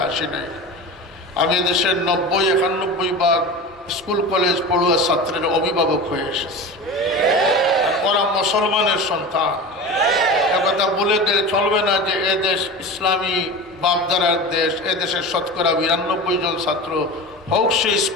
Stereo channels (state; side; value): normal; both; correlation 0.30